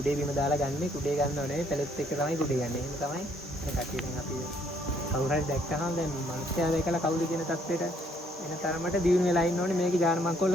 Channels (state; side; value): normal; both; correlation 0.66